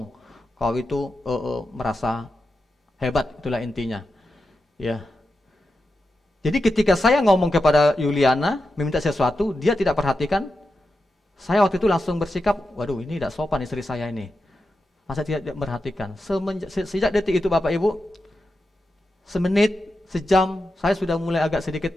kau itu merasa hebat, itulah intinya. Ya. Jadi ketika saya ngomong kepada Yuliana, meminta sesuatu, dia tidak perhatikan, saya waktu itu langsung bersikap, waduh ini tidak sopan istri saya ini. Masa tidak perhatikan? Sejak detik itu Bapak Ibu, semenit, sejam, saya sudah mulai agak sedikit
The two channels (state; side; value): normal; both; correlation 0.89